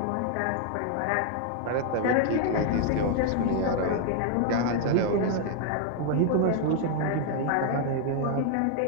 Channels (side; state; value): both; different; correlation 0.00